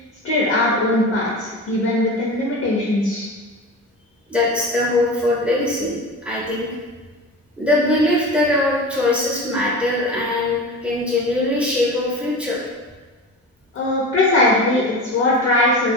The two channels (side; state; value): both; normal; correlation 0.30